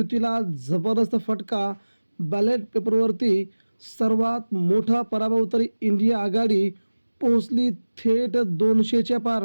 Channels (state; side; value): inverted; both; correlation -1.00